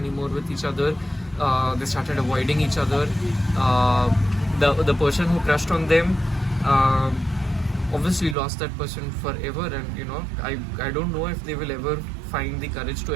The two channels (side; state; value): left; drops out; at 8.3 s